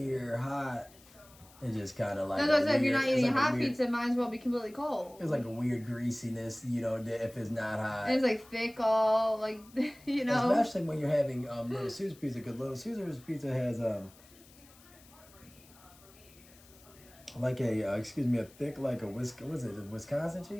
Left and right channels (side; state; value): left; noise; hiss, 24 dB below the sound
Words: hot, it's just kind of like. That's what I said. If you're not eating hot pizza, it might as well be completely cold. It's like a weird greasiness, you know, if it's not hot. And it's like thick, all like, you know. Especially when you're having Little Caesars pizza, because Little Caesars pizza has like a thick like a Wisconsin